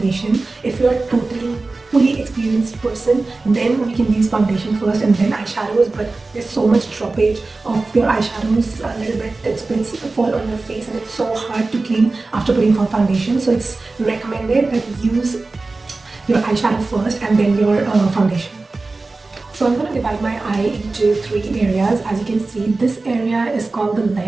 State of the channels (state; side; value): quieter; left; 3.5 dB